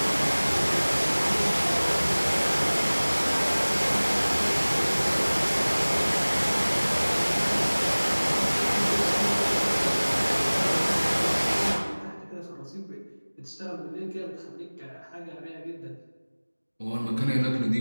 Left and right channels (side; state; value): both; inverted; correlation -1.00